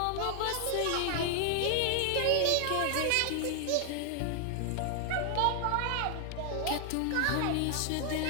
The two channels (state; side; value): different; both; correlation 0.00